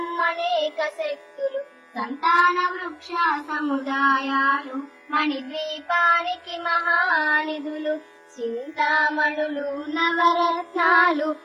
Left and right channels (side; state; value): both; identical; correlation 1.00